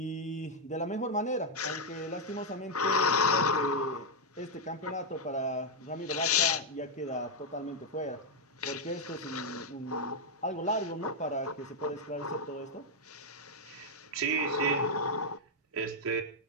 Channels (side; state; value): both; normal; correlation -0.01